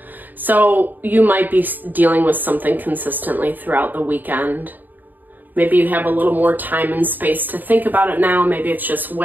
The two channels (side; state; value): left; late; 0.088 ms